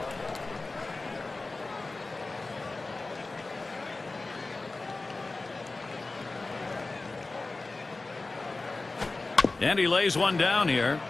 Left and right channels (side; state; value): right; quieter; 3.4 dB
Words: And he lays one down here.